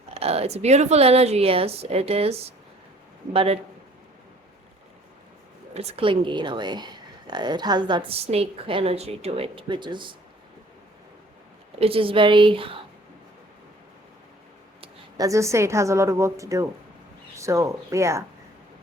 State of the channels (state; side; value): normal; both; correlation 0.54